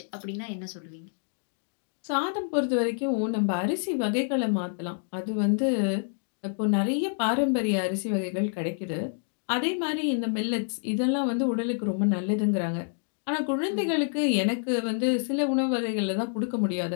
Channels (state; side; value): silent; right; digital silence